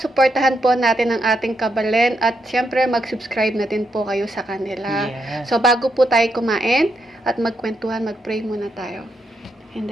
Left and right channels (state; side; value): normal; both; correlation 0.81